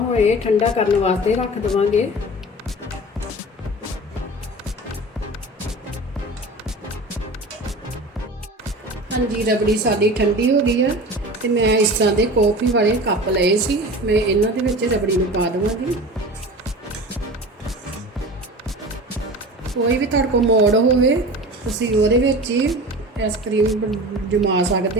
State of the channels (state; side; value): normal; both; correlation 0.35